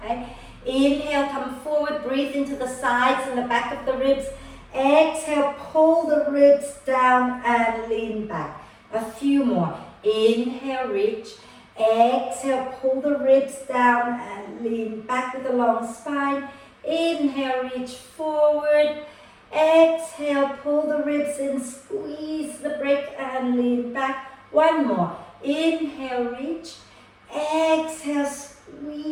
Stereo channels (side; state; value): both; identical; correlation 1.00